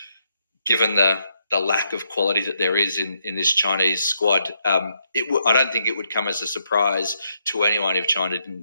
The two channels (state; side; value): inverted; both; correlation -0.78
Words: given the lack of quality that there is in this Chinese squad, I don't think it would come as a surprise to anyone if China didn't